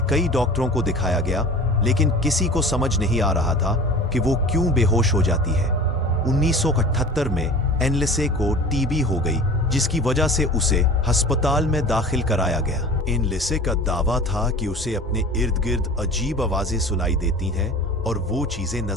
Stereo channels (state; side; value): normal; both; correlation 0.40